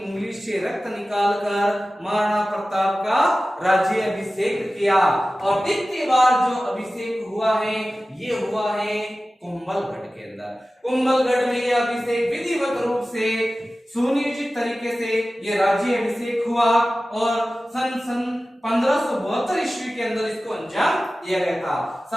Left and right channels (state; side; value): normal; both; correlation 0.96